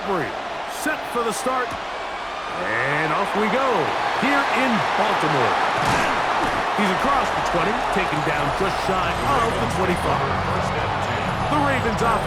Set for the start. And off we go here in Baltimore. He's across the 20, taken down just shy of the 25. The Ravens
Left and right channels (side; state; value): both; identical; correlation 1.00